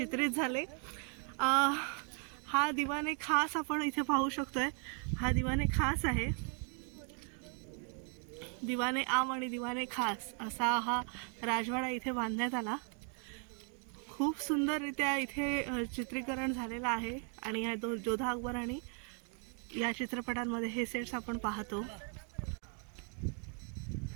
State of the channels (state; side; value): quieter; left; 38.4 dB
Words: झाले. हा दिवाने खास आपण इथे पाहू शकतोय. हा दिवाने खास आहे. दिवाने आम आणि दिवाने खास असा हा राजवाडा इथे बांधण्यात आला. खूप सुंदररित्या इथे चित्रीकरण झालेलं आहे आणि ह्या जोधा अकबर आणि या चित्रपटांमध्ये हे सेट्स आपण पाहतो.